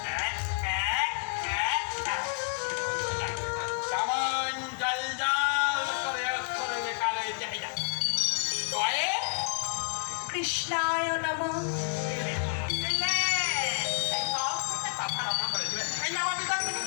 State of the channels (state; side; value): silent; right; digital silence